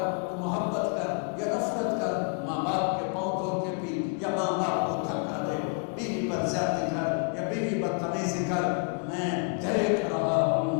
تو محبت کر یا نفرت کر، ماں باپ کے پاؤں دھو کے پی یا ماں باپ کو دھکا دے، بیوی پر زیادتی کر یا بیوی بدتمیزی کر، میں دیکھ رہا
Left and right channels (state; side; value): quieter; right; 37.3 dB